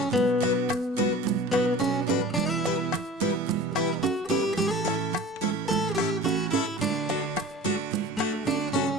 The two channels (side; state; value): both; normal; correlation 0.41